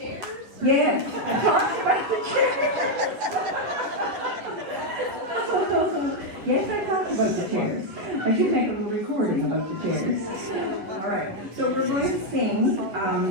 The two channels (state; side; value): late; left; 10 ms